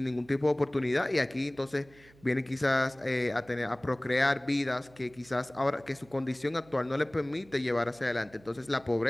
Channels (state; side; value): noise; right; hum, 26 dB below the sound